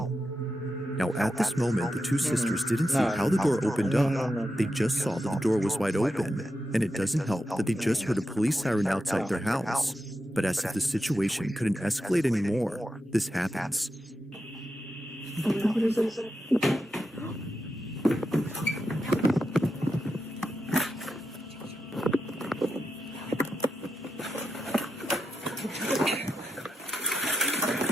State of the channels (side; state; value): both; normal; correlation 0.87